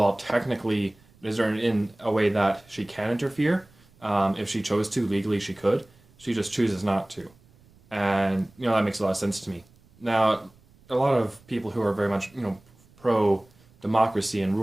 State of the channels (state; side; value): noise; right; rumble, 29 dB below the sound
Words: technically it is in a way that she can interfere, if she chose to legally she could. She just chooses not to, and that makes a lot of sense to me. Now a lot of people who are very much pro democracy and